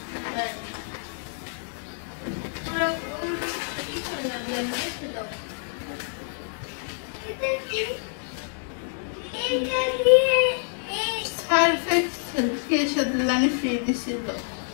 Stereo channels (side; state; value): right; silent; 59 dB below the other